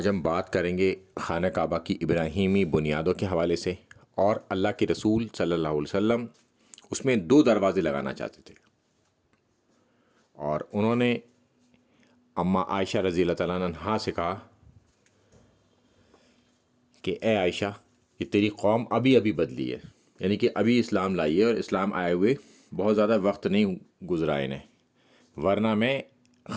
ہم بات کریں گے خانہ کعبہ کی ابراہیمی بنیادوں کے حوالے سے، اور اللہ کے رسول صلی اللہ علیہ وسلم اس میں 2 دروازے لگانا چاہتے تھے، اور انہوں نے اماں عائشہ رضی اللہ تعالیٰ عنہا سے کہا کہ اے عائشہ، کہ تیری قوم ابھی ابھی بدلی ہے، یعنی کہ ابھی اسلام لائی ہے، اور اسلام آئے ہوئے بہت زیادہ وقت نہیں گزرا انہیں، ورنہ میں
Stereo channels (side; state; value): both; identical; correlation 1.00